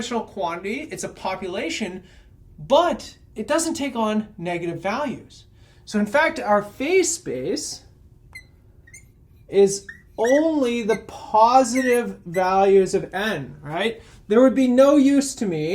quantity. It's a population, but it doesn't take on negative values. So in fact, our phase space is only the positive values of n, right? There would be no use to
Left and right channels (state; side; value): identical; both; correlation 1.00